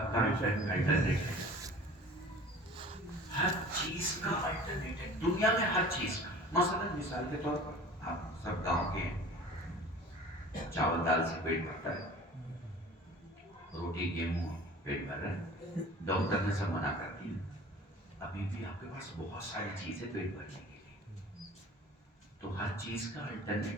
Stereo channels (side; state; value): both; normal; correlation 0.43